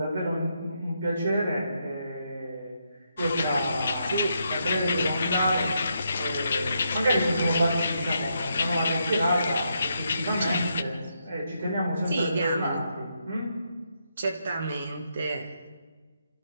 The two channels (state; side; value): inverted; both; correlation -0.79